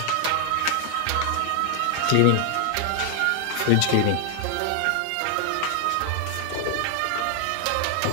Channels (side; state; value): both; different; correlation 0.00